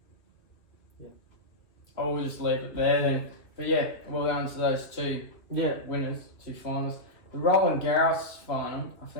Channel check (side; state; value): right; late; 2.5 ms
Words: Yeah. I'll just leave it there then. But yeah, well done to those two winners, 2 finalists. The Roland Garros final, I